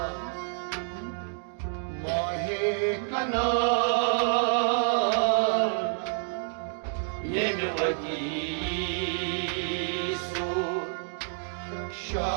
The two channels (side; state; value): left; silent; digital silence